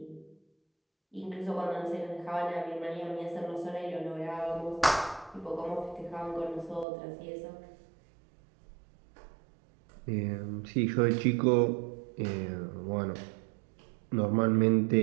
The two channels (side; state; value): left; drops out; at 6.9 s